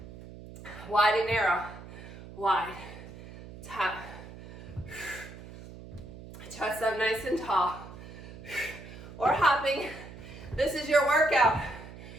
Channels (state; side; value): noise; right; hum, 15 dB below the sound